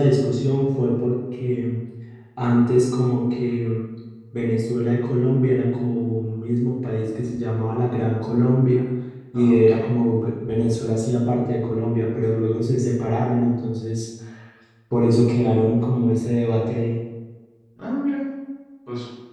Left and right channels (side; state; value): both; identical; correlation 1.00